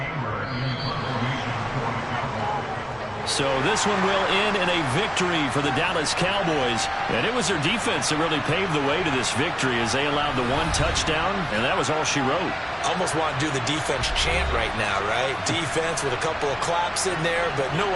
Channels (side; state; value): both; identical; correlation 1.00